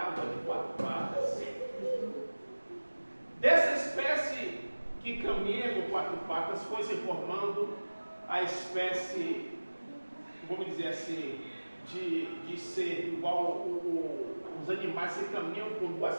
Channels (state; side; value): inverted; both; correlation -1.00